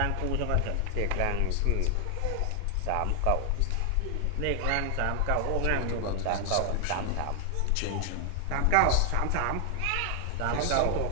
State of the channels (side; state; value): both; different; correlation 0.00